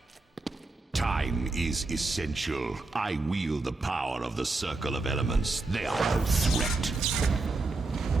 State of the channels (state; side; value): quieter; left; 3.4 dB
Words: Time is essential. I wield the power of the Circle of Elements. They are no threat.